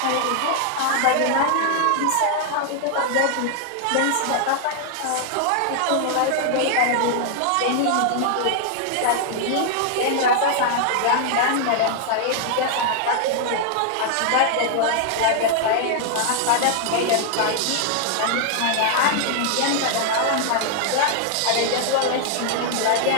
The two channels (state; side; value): different; both; correlation -0.01